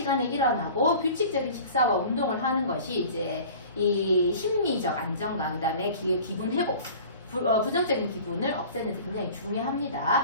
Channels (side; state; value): both; inverted; correlation -0.43